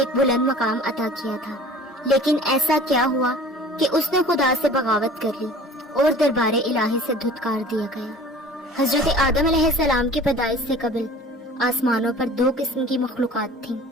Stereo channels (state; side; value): normal; both; correlation 0.45